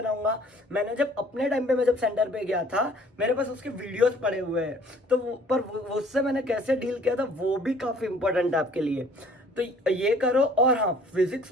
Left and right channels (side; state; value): both; normal; correlation 0.55